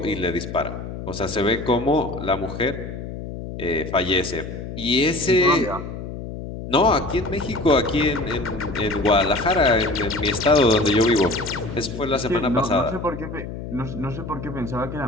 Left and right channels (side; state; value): left; noise; hum, 9 dB below the sound